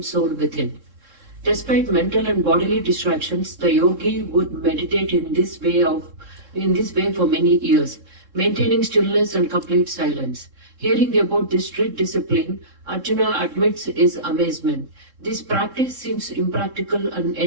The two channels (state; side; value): late; left; 3.7 ms